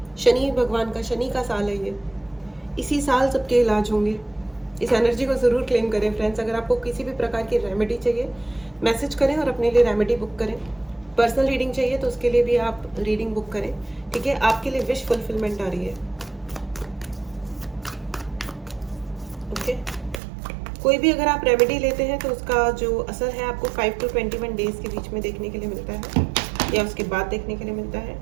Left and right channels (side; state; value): left; drops out; at 20.2 s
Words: शनि भगवान का, शनि का साल है ये, इसी साल सबके इलाज होंगे। इस एनर्जी को ज़रूर क्लेम करें फ्रेंड्स। अगर आपको किसी भी प्रकार की रेमेडी चाहिए मैसेज करें और अपने लिए रेमेडी बुक करें। पर्सनल रीडिंग चाहिए तो उसके लिए भी आप रीडिंग बुक करें, ठीक है। आपके लिए विश फुलफिलमेंट आ रही है, ओके। कोई भी अगर आप रेमेडी लेते हैं तो उसका जो असर है आपको 5 to 21 डेज के बीच में देखने के लिए मिलता है, या उसके बाद देखने के लिए मिलता है,